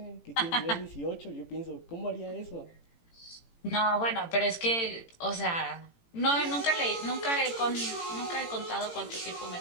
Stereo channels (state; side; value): late; right; 18 ms